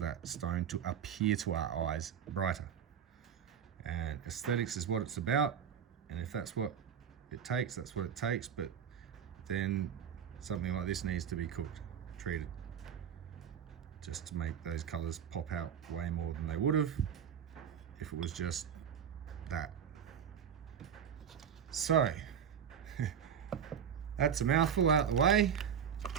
stone to appear to our eyes brighter. And aesthetics is what it's about, and if that's what it takes, that's what it takes. But then something like this needs to be cooked, treated, just to make those colours pop out way more than they would have if it was just that. So that's a mouthful out the way.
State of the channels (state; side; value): quieter; left; 8.2 dB